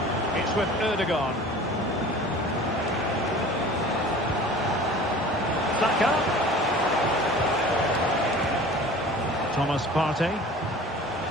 It's with Ødegaard. Saka. Thomas Partey.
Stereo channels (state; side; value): normal; both; correlation 0.43